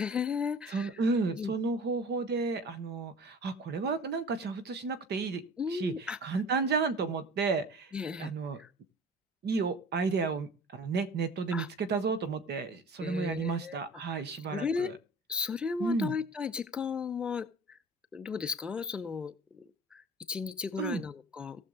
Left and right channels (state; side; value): normal; both; correlation 0.42